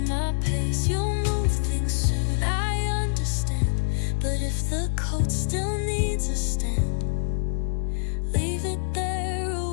my pace. You'll move things soon, I understand, but if the coat still needs a stand, leave it there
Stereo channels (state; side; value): silent; right; 61 dB below the other